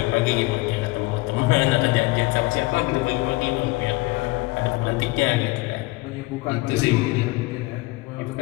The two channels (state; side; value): quieter; right; 22.4 dB